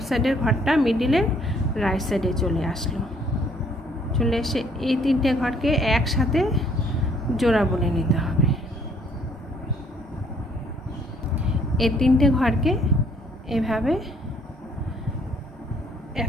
সাইডের ঘরটা মিডিলের রাইট সাইডে চলে আসলো। চলে এসে এই 3টে ঘরকে একসাথে জোড়া বুনে নিতে হবে। এই 3টে ঘরকে এভাবে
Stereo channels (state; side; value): normal; both; correlation 0.63